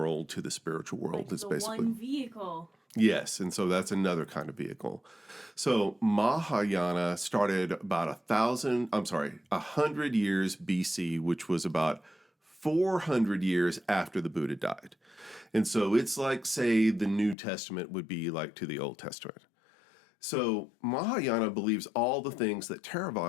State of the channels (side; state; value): right; drops out; at 17.4 s